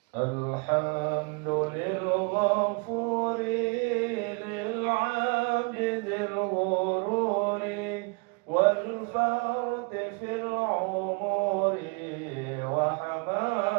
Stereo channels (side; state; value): left; quieter; 33.4 dB